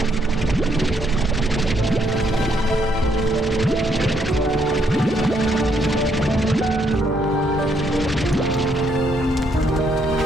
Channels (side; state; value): both; normal; correlation 0.72